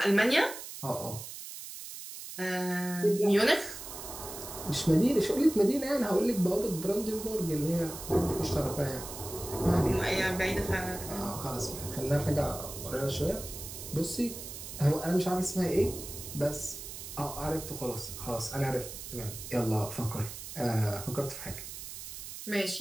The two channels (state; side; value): noise; right; hiss, 10 dB below the sound